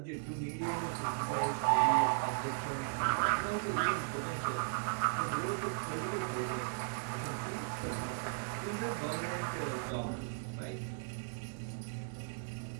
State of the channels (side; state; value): left; silent; digital silence